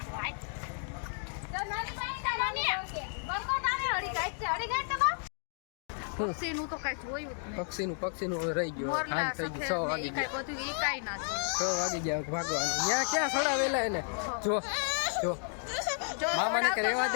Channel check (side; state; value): right; silent; 56 dB below the other